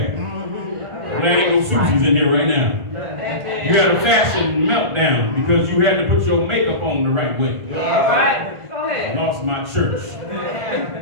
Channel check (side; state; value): left; late; 1.5 ms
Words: Well, there ain't no Susies in here right now. You had a fashion meltdown because you had to put your makeup on the right way. I lost my church.